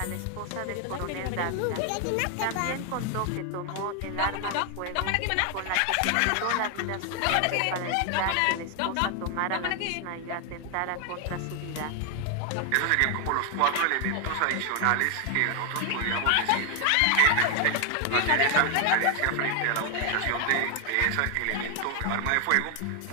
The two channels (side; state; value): both; different; correlation 0.01